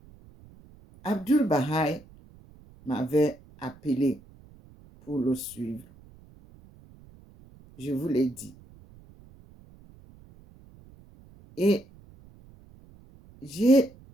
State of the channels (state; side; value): noise; right; rumble, 24 dB below the sound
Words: Abdul Baha'i m'avait appelé pour le suivre. Je vous l'ai dit. Et j'ai